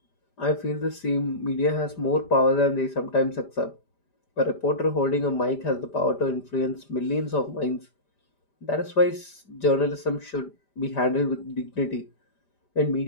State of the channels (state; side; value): late; right; 5.0 ms